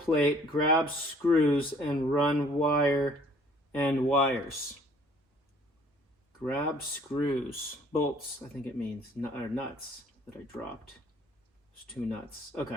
grab screws, and run wire and wires. Grab screws, bolts, I think it means, or nuts that I dropped. There's 2 nuts.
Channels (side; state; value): both; normal; correlation 0.57